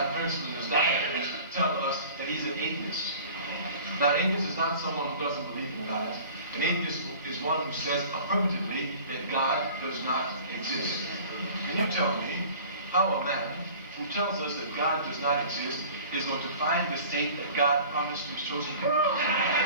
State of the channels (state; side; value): inverted; both; correlation -0.44